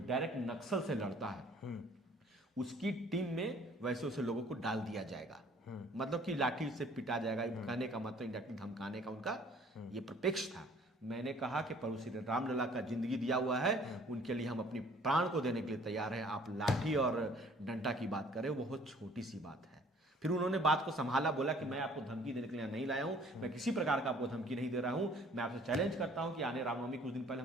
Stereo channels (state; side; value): normal; both; correlation 0.56